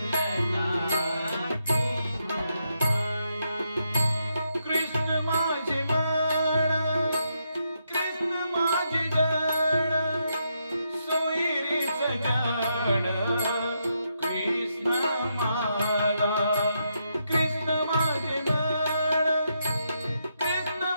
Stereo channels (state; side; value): inverted; both; correlation -0.80